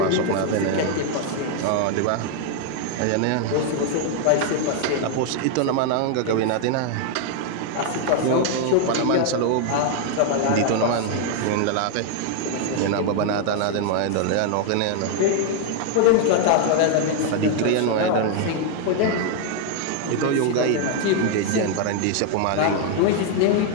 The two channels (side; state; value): both; different; correlation 0.00